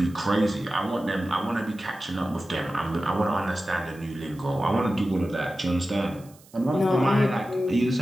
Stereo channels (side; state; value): right; noise; hiss, 26 dB below the sound